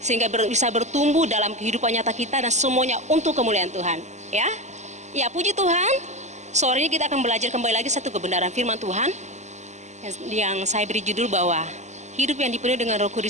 bisa bertumbuh dalam kehidupan nyata kita dan semuanya untuk kemuliaan Tuhan. Ya, puji Tuhan. Sore ini kita akan belajar kembali lagi satu kebenaran firman Tuhan yang saya beri judul bahwa hidup yang dipenuhi dengan Roh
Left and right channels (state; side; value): late; left; 0.34 ms